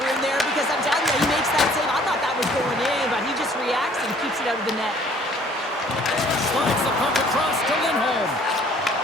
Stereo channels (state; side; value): normal; both; correlation 0.57